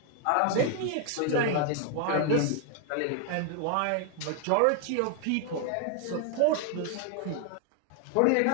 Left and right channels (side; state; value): both; different; correlation 0.00